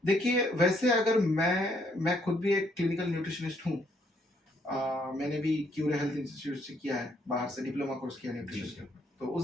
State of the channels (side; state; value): both; normal; correlation 0.70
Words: देखिए वैसे अगर मैं खुद भी एक क्लिनिकल न्यूट्रिशनिस्ट हूँ। मैंने भी क्यूरे हेल्थ इंस्टीट्यूट से किया है, बाहर से डिप्लोमा कोर्स किया न्यूट्रिशन के ऊपर। तो